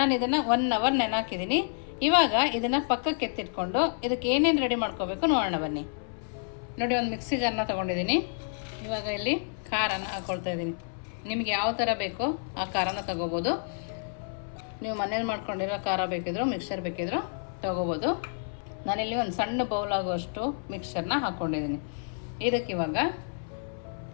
ಇದನ್ನು 1 ಅವರ್ ನೆನಾಕಿದ್ದೀನಿ. ಇವಾಗ ಇದನ್ನು ಪಕ್ಕಕ್ಕೆ ಎತ್ತಿಟ್ಕೊಂಡು ಇದಕ್ಕೆ ಏನೇನು ರೆಡಿ ಮಾಡ್ಕೋಬೇಕು ನೋಡೋಣ ಬನ್ನಿ. ನೋಡಿ, ಒಂದು ಮಿಕ್ಸಿ ಜಾರ್ನ ತೊಗೊಂಡಿದ್ದೀನಿ. ಇವಾಗ ಇಲ್ಲಿ ಖಾರನ ಹಾಕ್ಕೊಳ್ತಾ ಇದ್ದೀನಿ. ನಿಮಗೆ ಯಾವ ಥರ ಬೇಕೋ ಆ ಖಾರನ ತೊಗೋಬೋದು. ನೀವು ಮನೇಲಿ ಮಾಡ್ಕೊಂಡಿರೋ ಖಾರ ಬೇಕಿದ್ರು ಮಿಕ್ಸರ್ ಬೇಕಿದ್ರು ತೊಗೋಬೋದು. ನಾನಿಲ್ಲಿ ಒಂದು ಸಣ್ಣ ಬೌಲ್ ಆಗುವಷ್ಟು ಮಿಕ್ಸರ್ನ ಹಾಕ್ಕೊಂಡಿದ್ದೀನಿ. ಇದಕ್ಕೆ ಇವಾಗ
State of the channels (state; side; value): silent; right; 57 dB below the other